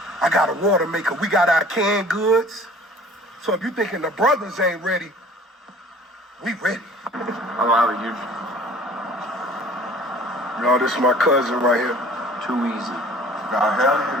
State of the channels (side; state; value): both; normal; correlation 0.49